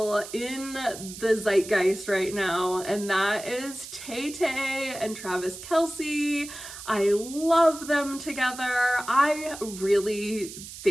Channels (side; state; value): right; noise; hiss, 13 dB below the sound